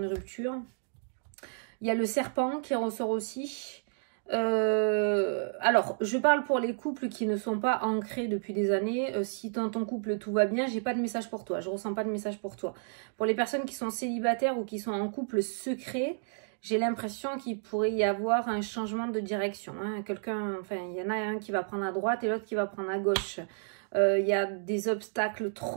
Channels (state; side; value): silent; left; digital silence